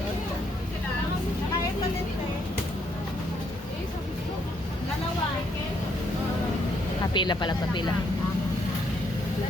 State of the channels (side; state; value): both; normal; correlation 0.72